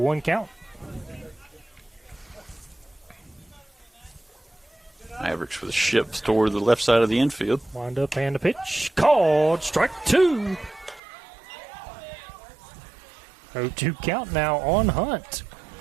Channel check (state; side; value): drops out; left; at 11.0 s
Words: count. Mavericks with a shift toward the left side of the infield. Wind up and a pitch. Called. Strike 2. 0-2 count now on Hunt.